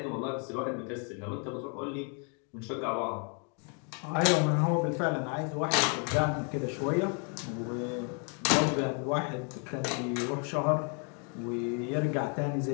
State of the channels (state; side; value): quieter; right; 38.0 dB